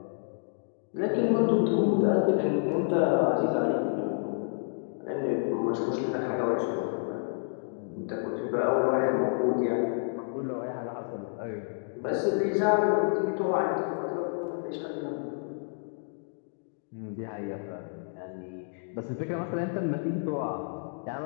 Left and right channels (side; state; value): right; silent; digital silence